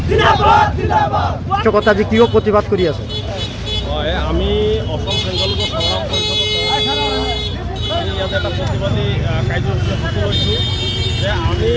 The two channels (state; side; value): identical; both; correlation 1.00